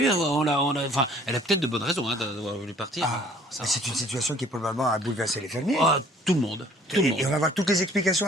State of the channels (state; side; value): normal; both; correlation 0.56